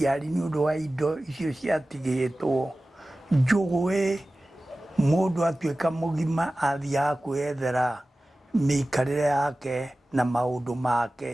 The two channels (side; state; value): both; normal; correlation 0.96